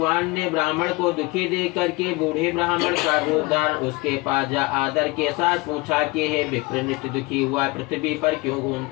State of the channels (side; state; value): right; quieter; 23.7 dB